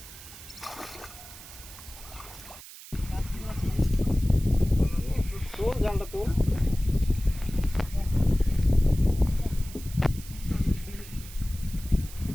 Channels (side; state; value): right; noise; hiss, 16 dB below the sound